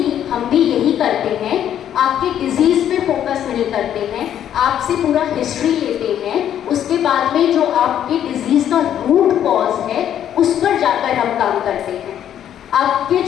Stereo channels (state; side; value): quieter; right; 10.3 dB